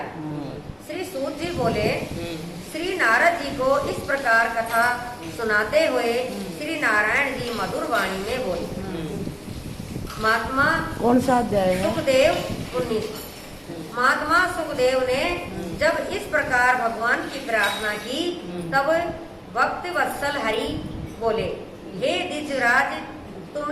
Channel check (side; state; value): both; identical; correlation 1.00